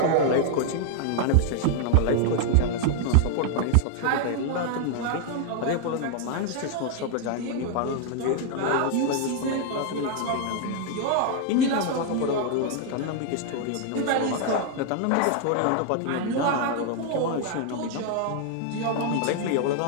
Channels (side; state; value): both; different; correlation 0.00